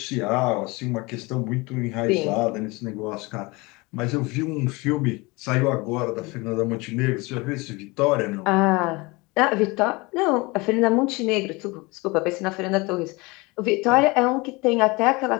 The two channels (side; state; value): right; quieter; 24.9 dB